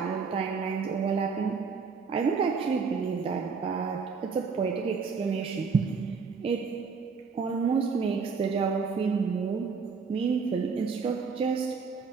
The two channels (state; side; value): quieter; left; 5.3 dB